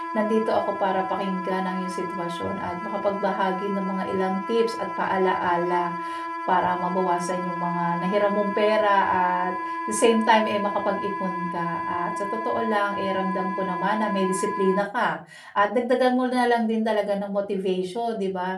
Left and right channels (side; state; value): both; identical; correlation 1.00